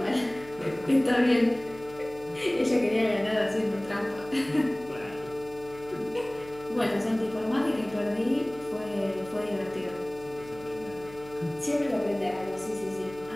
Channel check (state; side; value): noise; left; hum, 20 dB below the sound